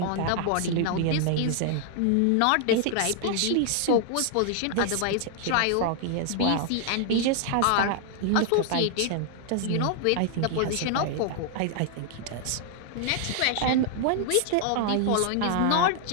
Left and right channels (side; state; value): both; different; correlation 0.00